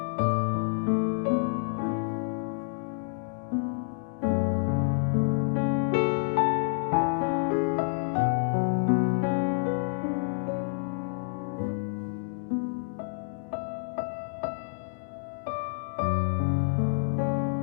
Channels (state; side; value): silent; right; digital silence